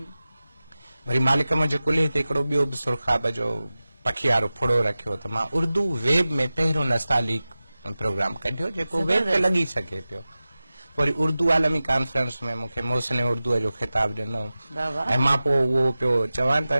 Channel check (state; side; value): inverted; both; correlation -0.95